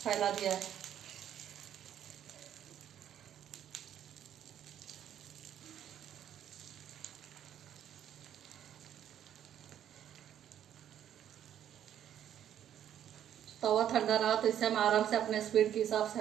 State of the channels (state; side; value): quieter; left; 10.3 dB